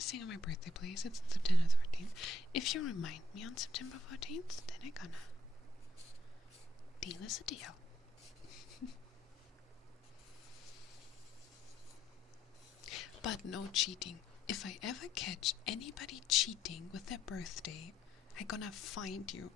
on my birthday, please? It's September 14th. If you remind me on September 14th, then I'm gonna. Deal is a deal. But no cheating. If I ever catch anybody cheating with their birthday, I'm gonna find you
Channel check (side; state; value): both; normal; correlation 0.72